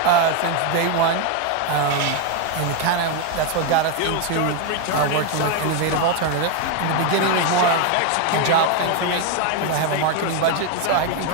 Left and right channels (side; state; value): both; different; correlation 0.01